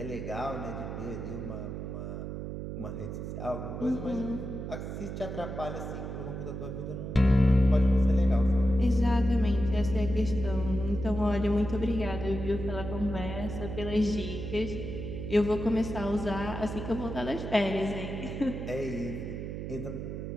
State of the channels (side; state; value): right; noise; hum, 6 dB below the sound